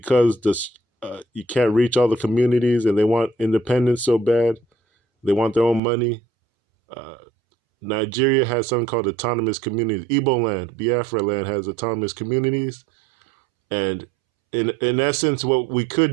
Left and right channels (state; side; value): drops out; left; at 5.8 s